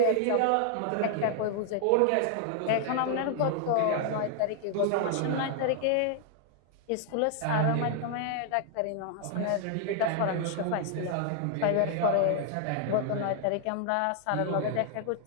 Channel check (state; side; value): different; both; correlation 0.00